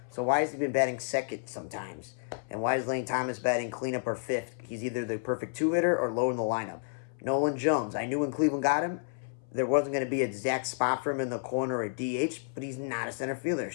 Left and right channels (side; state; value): right; silent; 57 dB below the other